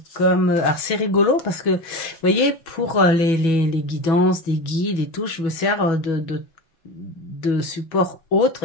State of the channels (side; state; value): right; late; 6.2 ms